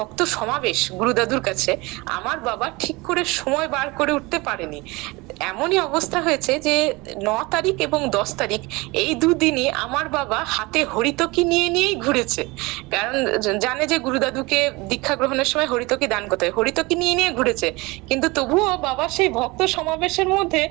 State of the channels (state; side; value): quieter; left; 23.8 dB